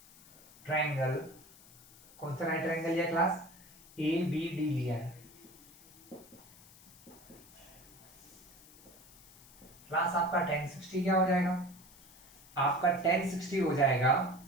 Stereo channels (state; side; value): noise; left; hiss, 23 dB below the sound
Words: ट्रायंगल, कौन सा राइट ट्रायंगल लिया क्लास, ए बी डी लिया है क्लास। आपका tan 60 क्या हो जाएगा, आपका tan 60 हो जाएगा